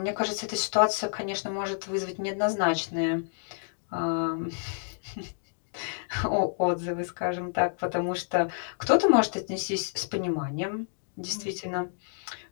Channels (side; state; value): right; silent; digital silence